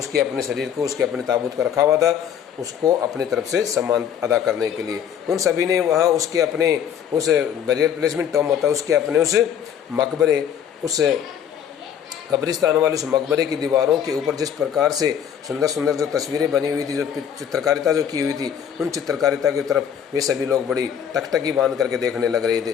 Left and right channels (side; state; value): right; quieter; 8.7 dB